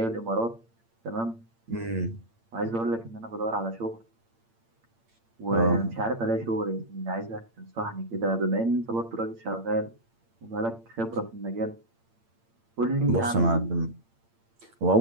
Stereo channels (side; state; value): left; late; 8.8 ms